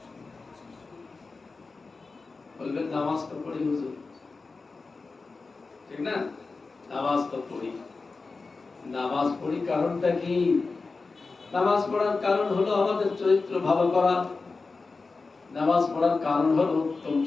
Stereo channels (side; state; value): right; quieter; 4.0 dB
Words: বলবেন নামাজ তো পড়ি হুজুর, ঠিক না? নামাজ তো পড়ি, নামাজ পড়ি কারণটা কি? নামাজ পড়ার কারণ হলো আমাদের চরিত্র ভালো করা। নামাজ পড়ার কারণ হলো উত্তম